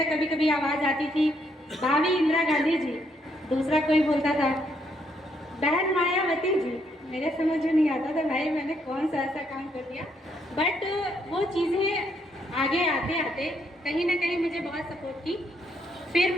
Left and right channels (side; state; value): both; normal; correlation 0.73